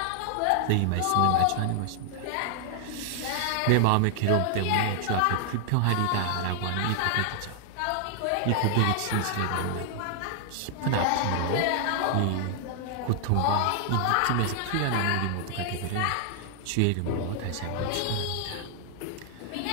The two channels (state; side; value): different; both; correlation 0.00